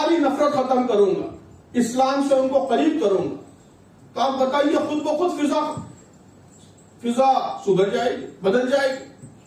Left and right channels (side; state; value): both; identical; correlation 1.00